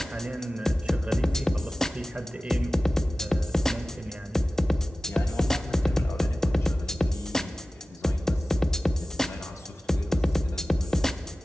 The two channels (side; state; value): both; normal; correlation 0.96